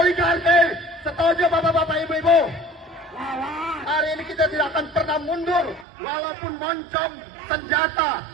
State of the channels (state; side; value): drops out; left; at 5.9 s